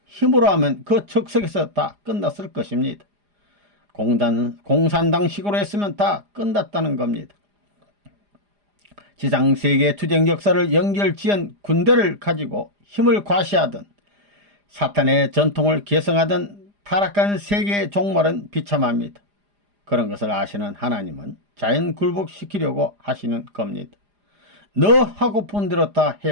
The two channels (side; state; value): left; late; 4.9 ms